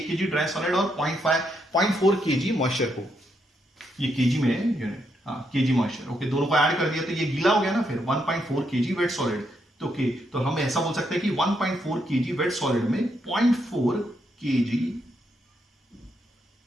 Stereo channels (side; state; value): both; normal; correlation 0.78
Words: kg ड्राई सॉलिड और 0.4 kg मॉइस्चर को, ये kg में यूनिट, हाँ kg मॉइस्चर, ओके, दोनों को ऐड कर दिया तो ये गीला हो गया ना, फिर 1.4 kg वेट सॉलिड। तो ओके, तो हम ऐसा बोल सकते हैं कि 1.4 kg वेट सॉलिड में 0.4 kg